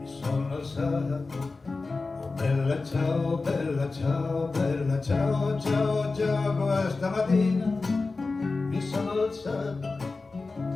sono alzato, oh bella ciao, bella ciao, bella ciao, ciao, ciao, questa mattina mi sono alzato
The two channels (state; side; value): quieter; right; 3.8 dB